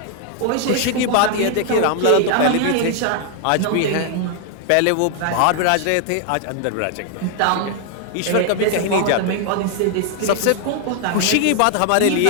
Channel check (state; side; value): different; both; correlation 0.00